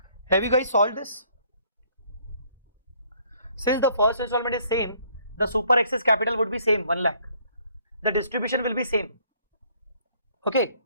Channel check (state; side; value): inverted; both; correlation -0.62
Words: Have you guys solved this? Since the first installment is same, the super excess capital would be same, 1 lakh. The distribution will be same. Okay.